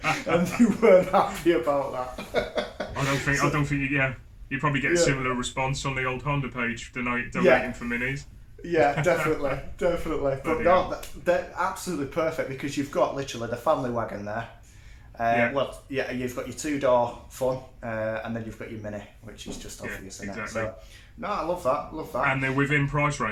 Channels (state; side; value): identical; both; correlation 1.00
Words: and they weren't happy about that. I don't think. You probably get a similar response on the old Honda page donating for minis. Yeah, definitely. But no, they're absolutely perfect because you've got literally the family wagon there. You've got your 2-door fun, and then you've got your Mini, which is just obvious. Exactly. So, no, I love that. And they're within price